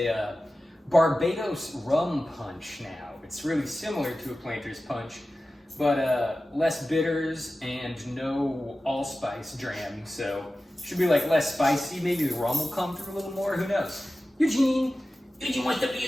Barbados Rum Punch now. It's really similar to a Planters Punch, but less bitters and no allspice dram, so should be like less spicy. Maybe the rum will come through a little more, who knows? Eugene wants to be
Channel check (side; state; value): both; normal; correlation 0.95